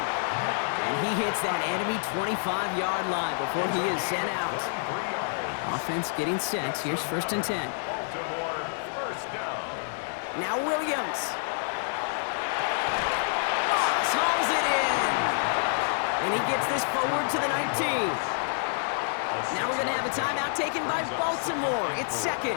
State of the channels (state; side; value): silent; right; digital silence